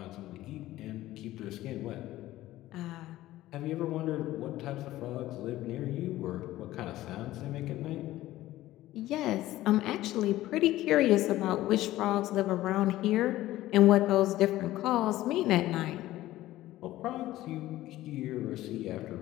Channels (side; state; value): right; quieter; 15.6 dB